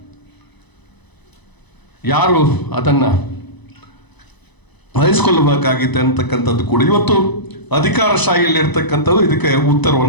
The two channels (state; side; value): late; right; 1.0 ms